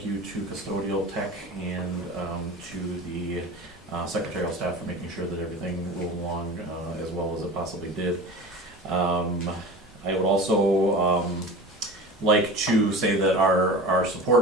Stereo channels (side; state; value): both; normal; correlation 0.35